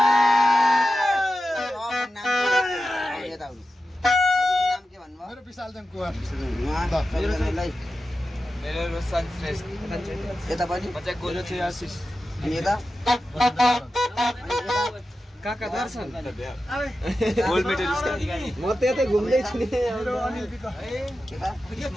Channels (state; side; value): normal; both; correlation 0.92